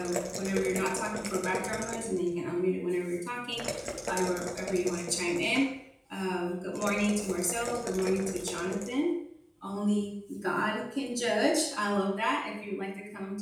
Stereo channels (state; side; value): identical; both; correlation 1.00